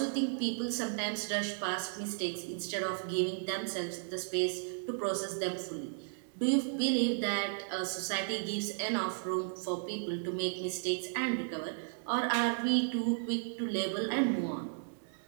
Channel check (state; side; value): silent; left; digital silence